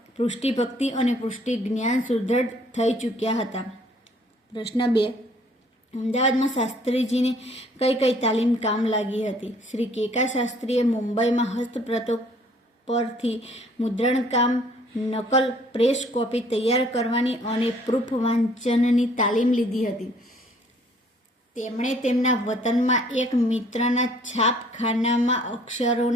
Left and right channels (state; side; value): normal; both; correlation 0.59